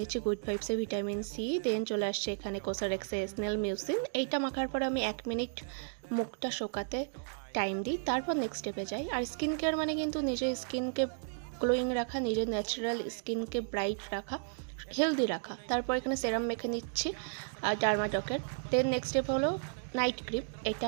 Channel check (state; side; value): silent; left; digital silence